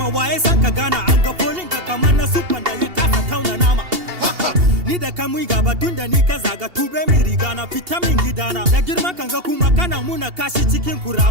waye san ka gana an ga folin ka kamar na super da ya kasa tauna nama ni da kai mu gaba tun da ni ka zaga tube mi riga na vitamin gidana da girma kan ga kuma kana muna kashi cikin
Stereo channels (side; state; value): left; late; 2.8 ms